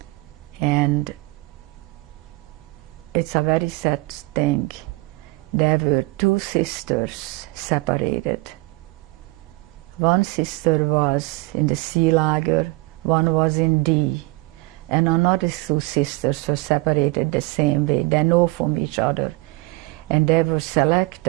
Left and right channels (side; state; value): left; quieter; 23.1 dB